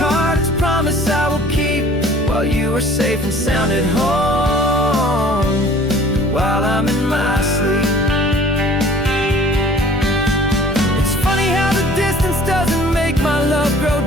it's a promise I will keep, while you are safe and sound at home, while I'm in my sleep. It's funny how the distance doesn't make my love grow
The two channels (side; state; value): both; normal; correlation 0.51